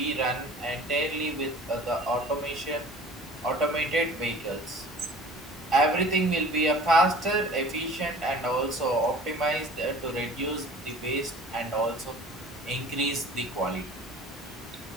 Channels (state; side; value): normal; both; correlation 0.45